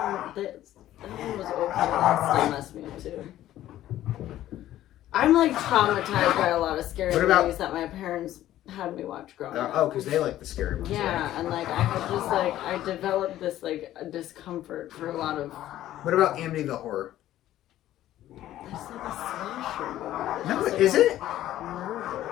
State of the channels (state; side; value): quieter; right; 13.4 dB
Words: That one was okay. That still messed me up too. I'm like traumatized by a lot of scary movies that my parents had me watch growing up. Oh, because they like the scary ones. Yeah, right? and like I had just like I developed this like discomfort for a lot of. What about Amityville Horror? That's like a slasher movie. No, like is it?